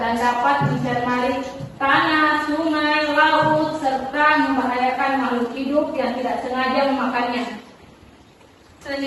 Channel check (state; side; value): identical; both; correlation 1.00